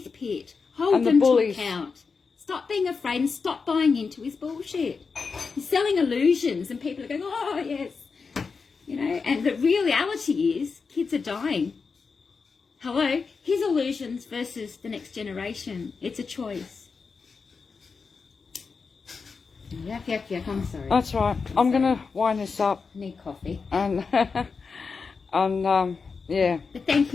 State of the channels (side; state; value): right; quieter; 5.0 dB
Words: Pitt. Hold And the them to bullies. account. Stop being afraid and stop buying into his bullshit. He's selling illusions and people are going, oh, yes. You know, and the reality is kids are dying. Hello? His illusions versus the next generation. It's a choice. Yuck, yuck, yuck. I'm sorry. That's right. I'm going to wind this up. I need coffee. And, yeah, But thank